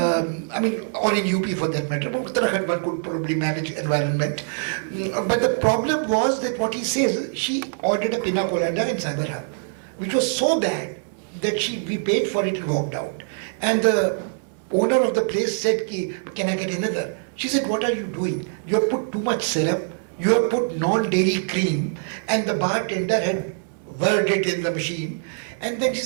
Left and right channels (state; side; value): silent; left; digital silence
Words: in UP for that matter. But Uttarakhand one could probably manage environment. But the problem was that what he says, she ordered a pina colada in Cyberhub, which was so bad that we paid for it and walked out. And the owner of the place said, can I get another? She said, what are you doing? You have put too much syrup, you have put non-dairy cream, and the bartender had whirled it in the machine. And then she